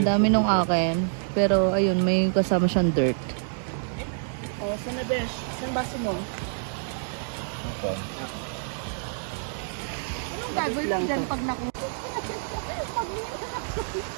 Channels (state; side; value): silent; left; digital silence